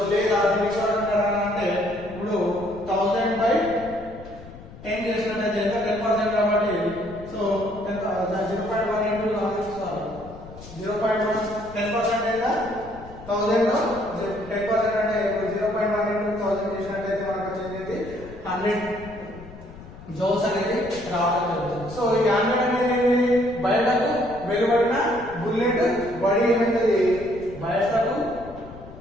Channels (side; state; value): left; noise; rumble, 17 dB below the sound